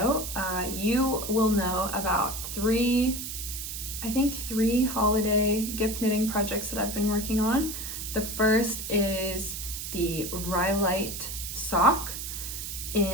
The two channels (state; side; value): noise; right; hiss, 6 dB below the sound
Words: you will know about three holiday gift knitting projects that I've been working on. The first is the Rhyolite sock